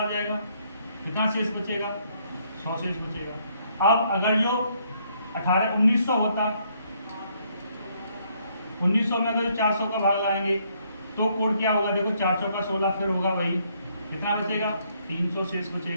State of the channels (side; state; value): both; inverted; correlation -0.70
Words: जाएगा, कितना शेष बचेगा, 100 शेष बचेगा। अब अगर जो 1900 होता, 1900 में अगर 400 का भाग लगाएंगे तो कोड क्या होगा, देखो 4 चौका 16, फिर होगा वही, कितना बचेगा, 300 शेष